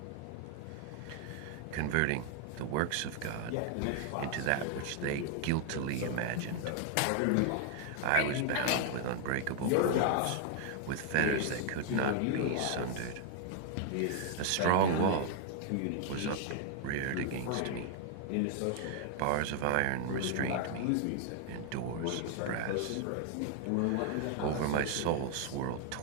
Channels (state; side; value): different; both; correlation 0.00